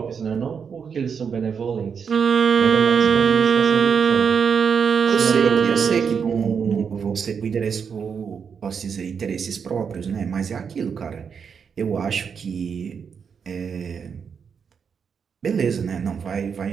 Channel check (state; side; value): quieter; left; 6.6 dB